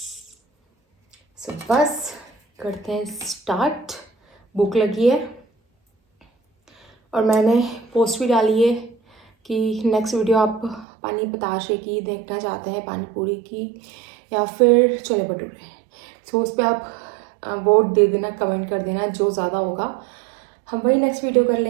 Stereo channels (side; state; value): left; drops out; at 10.9 s